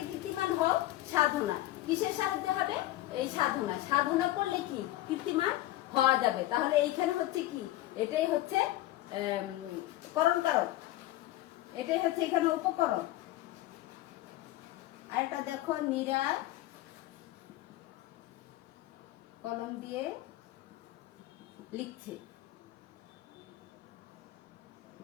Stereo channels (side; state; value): right; quieter; 16.0 dB